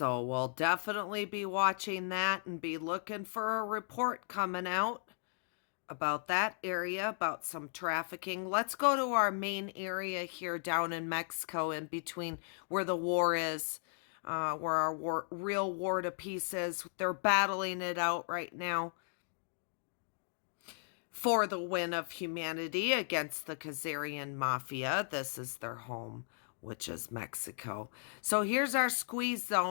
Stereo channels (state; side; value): silent; right; digital silence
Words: we'll definitely be watching that and be looking for a report coming out about that area, about some trafficking. Let's go to our main area here down in Mexico, in between where the war is, where our real war to peace is. They're battling it out right now for the win of humanity against the Khazarian mafia. This is their home, which is Mexico. So here's our squeeze